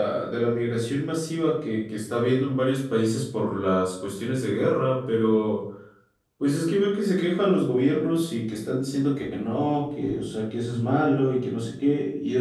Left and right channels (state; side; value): identical; both; correlation 1.00